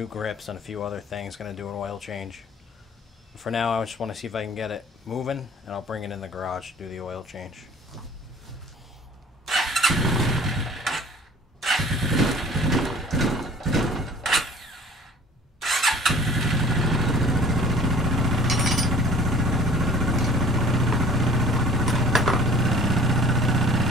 grips and a few other things. Going to do an oil change. For now, I just want to see if I can get it moving, and I'll bring it in the garage to do the oil change.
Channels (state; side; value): normal; both; correlation 0.49